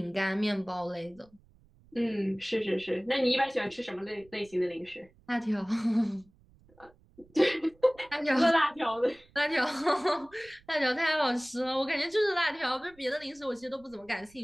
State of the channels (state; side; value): noise; right; rumble, 29 dB below the sound